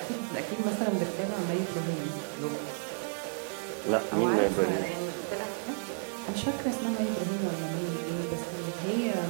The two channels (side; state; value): left; silent; 57 dB below the other